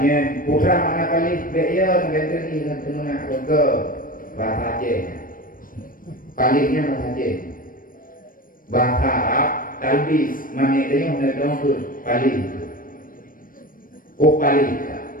putra mana palih beya negara ini kan tenuna ke bahasa Aceh palihnya bahasa Aceh bahasa Arab talbis manitanya menedong palih palih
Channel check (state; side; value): late; right; 0.40 ms